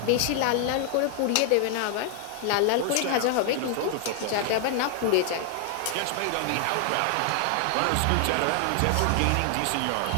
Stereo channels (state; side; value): different; both; correlation 0.00